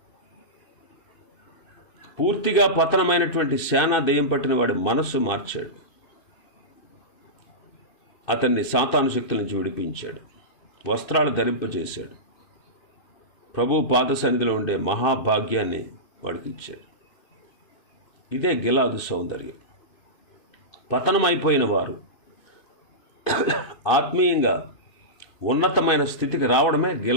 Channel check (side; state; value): right; late; 2.6 ms